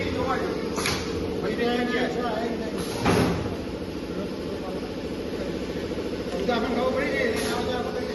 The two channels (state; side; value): identical; both; correlation 1.00